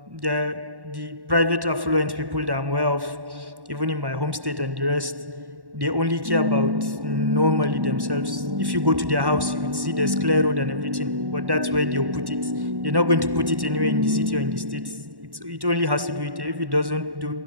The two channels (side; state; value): left; late; 1.1 ms